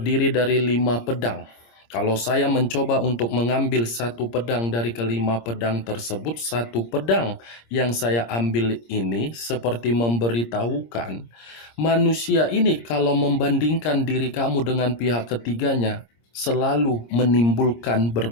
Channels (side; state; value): right; late; 26 ms